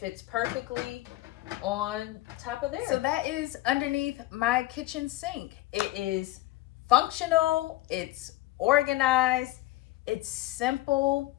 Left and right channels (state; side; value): quieter; right; 17.7 dB